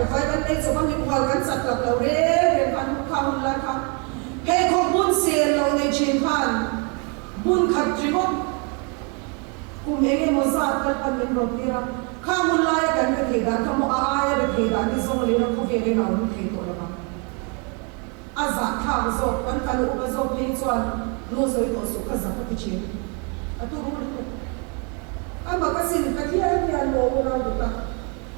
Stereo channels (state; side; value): quieter; left; 34.9 dB